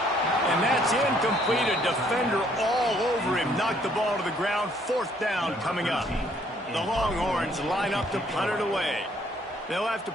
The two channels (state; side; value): normal; both; correlation 0.65